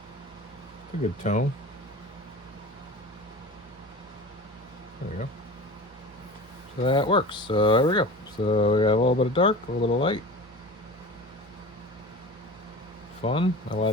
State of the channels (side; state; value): both; normal; correlation 0.34